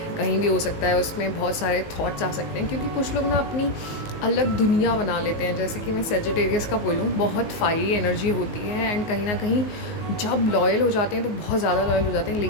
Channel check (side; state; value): right; late; 19 ms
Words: कहीं भी हो सकता है, उसमें बहुत सारे थॉट्स आ सकते हैं, क्योंकि कुछ लोग ना अपनी अलग दुनिया बना लेते हैं। जैसे कि मैं सेजिटेरियस का बोलूँ, बहुत फायरी एनर्जी होती है, एंड कहीं ना कहीं जब लॉयल हो जाते हैं तो बहुत ज़्यादा लॉयल हो जाते हैं,